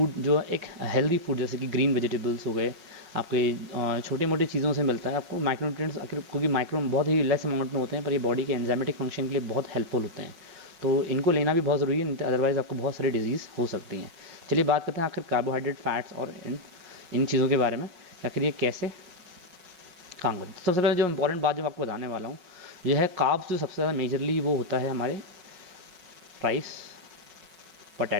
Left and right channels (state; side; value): late; left; 5.5 ms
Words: जो एक हेल्दी फूड जैसे कि ग्रीन वेजिटेबल्स हो गए, आपके छोटे मोटे चीज़ों से मिलता है आपको माइक्रोन्यूट्रिएंट्स। आखिर क्योंकि माइक्रो बहुत ही लेस अमाउंट में होते हैं, पर ये बॉडी के एंजाइमेटिक फंक्शन के लिए बहुत हेल्पफुल होते हैं। तो इनको लेना भी बहुत ज़रूरी है, अदरवाइज़ आपको बहुत सारी डिजीज़ हो सकती हैं। चलिए बात करते हैं आखिर कार्बोहाइड्रेट, फैट्स और इन चीज़ों के बारे में, आखिर ये कैसे काम करते हैं। सबसे पहले जो इंपॉर्टेंट बात जो मैं आपको बताने वाला हूँ यह है कार्ब्स। जो सबसे ज़्यादा मेजरली वो होता है हमारे राइस,